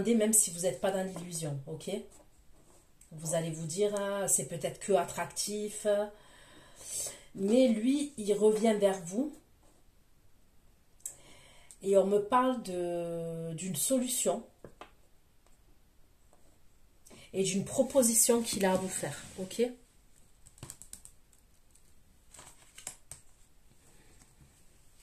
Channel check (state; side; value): identical; both; correlation 1.00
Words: même si vous n'êtes pas dans l'illusion. Ok. Vous allez vous dire, hein, c'est peut-être que attractif. Mais lui, il revient vers vous. Et on me parle d'une solution et d'une proposition qu'il a à vous faire. Ok?